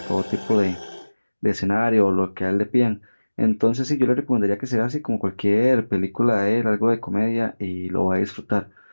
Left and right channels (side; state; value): both; inverted; correlation -1.00